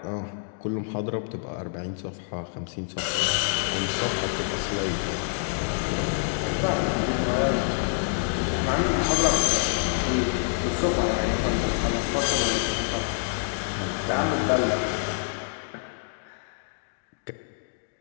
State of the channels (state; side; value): silent; right; digital silence